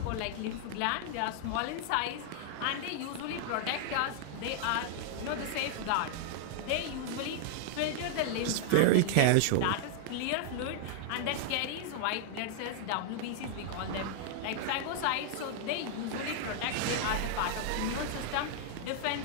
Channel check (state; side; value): different; both; correlation 0.00